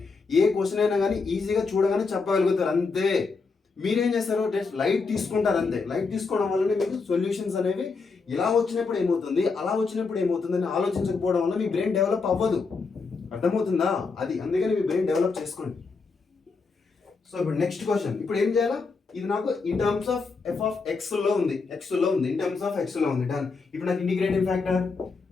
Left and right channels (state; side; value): quieter; right; 4.5 dB